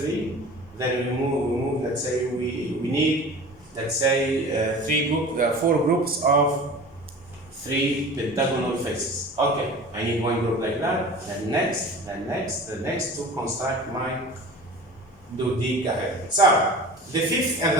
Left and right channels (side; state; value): both; normal; correlation 0.38